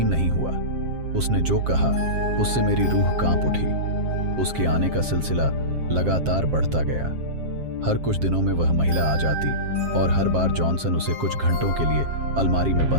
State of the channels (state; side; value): late; left; 7.6 ms